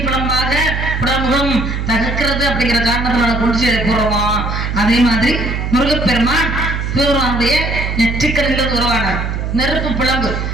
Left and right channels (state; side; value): noise; right; hum, 3 dB below the sound